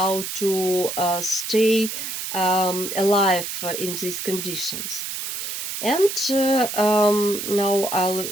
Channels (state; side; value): noise; right; hiss, 5 dB below the sound